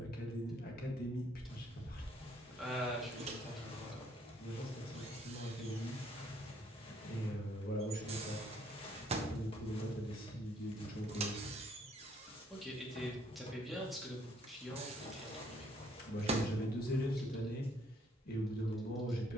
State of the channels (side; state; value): both; normal; correlation 0.66